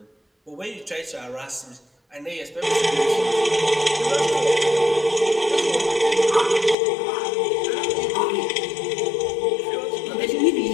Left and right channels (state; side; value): drops out; right; at 6.8 s